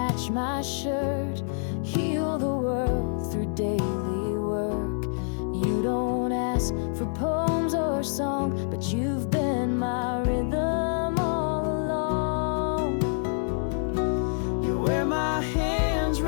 my shirt, heal the world through daily work. You don't ask for poems or song, but you've been my rhythm.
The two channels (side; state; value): right; silent; 59 dB below the other